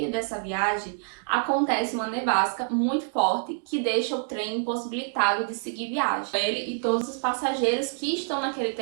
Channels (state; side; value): silent; left; digital silence